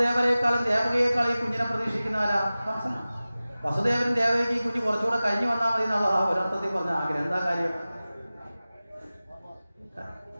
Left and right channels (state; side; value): inverted; both; correlation -0.97